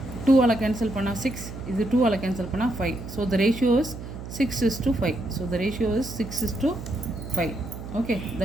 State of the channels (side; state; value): right; noise; hum, 10 dB below the sound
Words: 2ஆல் கேன்சல் பண்ணால் 6, இது 2ஆல் கேன்சல் பண்ணால் 5. So the ratio is 6:5. So the ratio is 6:5. Okay,